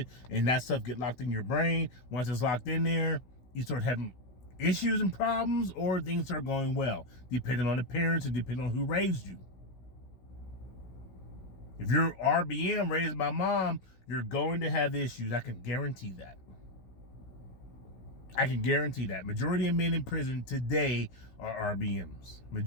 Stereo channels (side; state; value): right; late; 16 ms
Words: and that stuff get locked in your brain. Once it's locked in there, you start having issues and problems, or things start going well, depending on the parents and depending on who raised you. If you're RBM, raised by mom, you're going to have issues. I can guarantee that. I can guarantee that. Majority of men in prison today are RBMs.